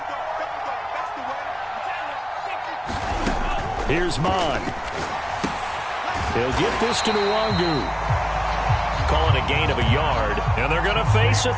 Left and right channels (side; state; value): both; identical; correlation 1.00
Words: Here's Mon. He'll get this to Nwangu. Calling a gain of a yard, and they're going to face a